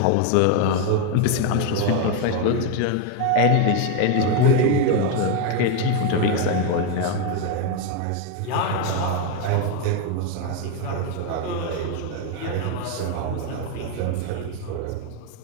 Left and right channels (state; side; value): different; both; correlation 0.01